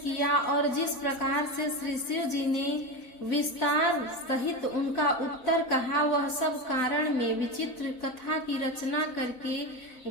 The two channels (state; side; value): late; right; 4.0 ms